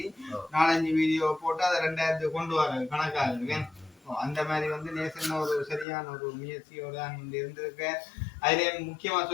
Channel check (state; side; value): drops out; right; at 5.9 s